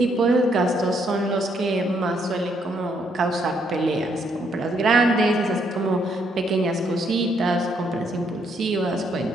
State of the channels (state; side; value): normal; both; correlation 0.72